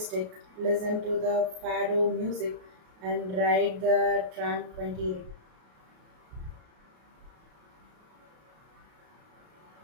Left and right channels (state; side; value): late; left; 33 ms